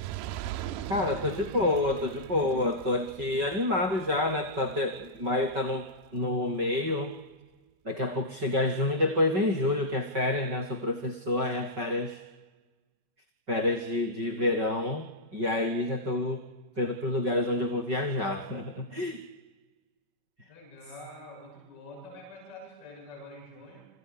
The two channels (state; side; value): late; left; 5.3 ms